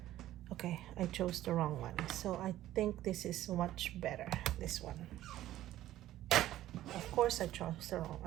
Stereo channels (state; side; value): quieter; left; 13.9 dB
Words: Okay, I chose the wrong one. So I think this is much better, this one. Of course I chose the wrong,